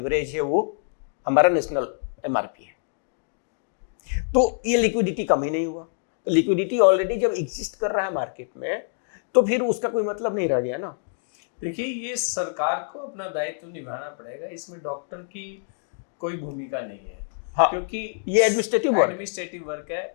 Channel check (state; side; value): silent; right; digital silence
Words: है वो हमारा नेशनल एमआरपी है। तो ये लिक्विडिटी कम ही नहीं हुआ। तो लिक्विडिटी ऑलरेडी जब एग्जिस्ट कर रहा है मार्केट में, तो फिर उसका कोई मतलब नहीं रह गया ना। देखिए, ये सरकार को अपना दायित्व निभाना पड़ेगा, इसमें डॉक्टर की कोई भूमिका नहीं है। हाँ, क्योंकि ये एडमिनिस्ट्रेटिव वर्क है।